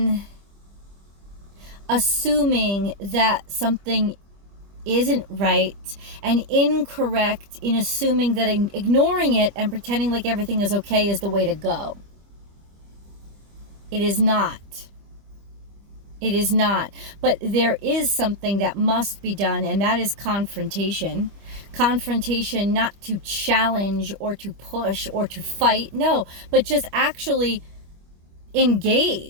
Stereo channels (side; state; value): left; late; 25 ms